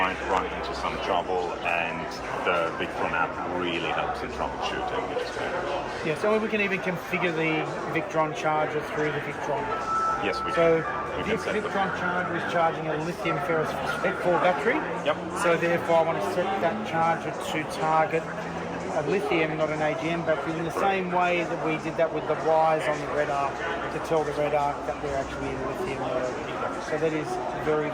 run into some trouble, and the Victron app really helps in troubleshooting, which is great. Yeah, so we can even configure the Victron charger through the Victron. Yes, we can. So this Victron charger is charging a lithium phosphate-4 battery. Yep. So therefore I want to set that charger to target a lithium, not an AGM battery, in the same way that we did that with the wires on the red arc to tell the red arc that we're actually in lithium mode. So that is very,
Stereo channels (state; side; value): identical; both; correlation 1.00